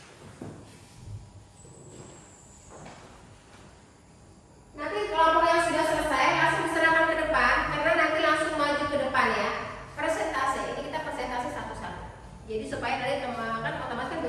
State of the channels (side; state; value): both; identical; correlation 1.00